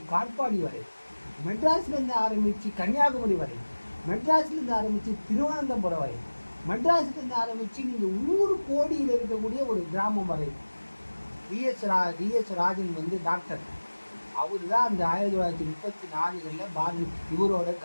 காட்பாடி வரை, மெட்ராஸ்லேருந்து ஆரம்பித்து கன்னியாகுமரி வரை, மெட்ராஸ்லேருந்து ஆரம்பித்து திருவனந்தபுரம் வரை, மெட்ராஸ்லேருந்து ஆரம்பித்து நீங்கள் ஊர் கோடியில் இருக்கக்கூடிய ஒரு கிராமம் வரை. டிஎஸ் ராஜன் வந்து டாக்டர், அவர் தான் அந்த 1934 இவரோட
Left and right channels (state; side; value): inverted; both; correlation -1.00